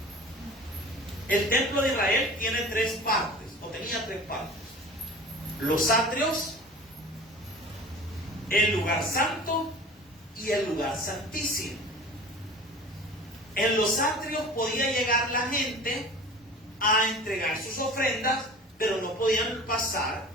El templo de Israel tiene 3 partes, o tenía 3 partes. Los atrios, el lugar santo y el lugar santísimo. En los atrios podía llegar la gente a entregar sus ofrendas, pero no podían pasar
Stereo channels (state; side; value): normal; both; correlation 0.40